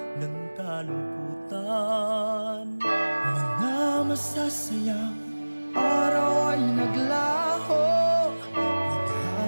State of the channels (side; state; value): both; inverted; correlation -1.00